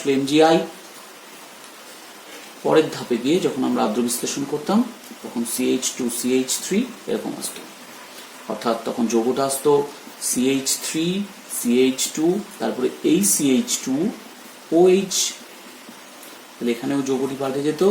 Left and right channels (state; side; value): identical; both; correlation 1.00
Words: MgI। পরের ধাপে গিয়ে যখন আমরা আর্দ্র বিশ্লেষণ করতাম তখন CH2 CH3 এরকম আসতো, অর্থাৎ তখন যৌগটা আসতো CH3 CH2, তারপরে এই CH2 OH, তাহলে এখানেও যৌগটি পাল্টে যেত,